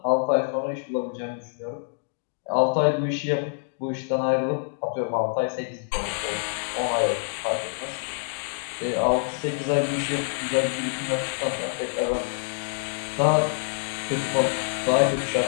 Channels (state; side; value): silent; right; digital silence